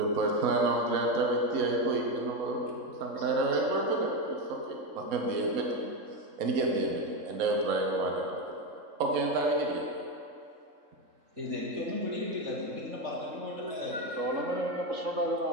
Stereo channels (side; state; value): left; late; 3.6 ms